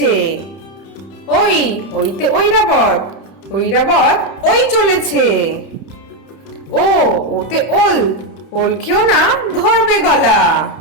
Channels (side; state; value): right; late; 30 ms